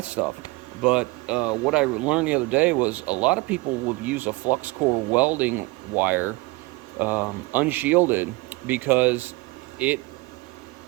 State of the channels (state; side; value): quieter; left; 23.1 dB